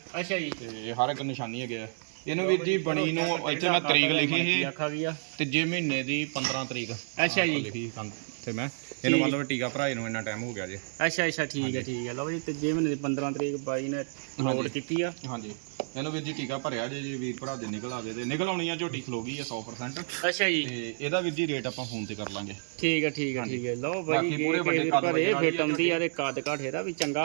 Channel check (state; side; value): silent; left; digital silence